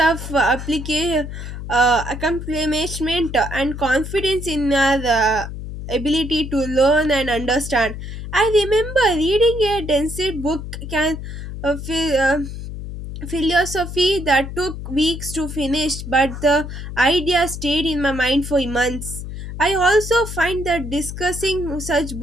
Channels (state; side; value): noise; left; hum, 8 dB below the sound